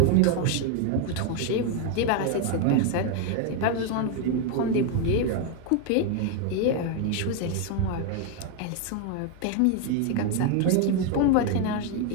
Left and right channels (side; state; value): both; different; correlation 0.01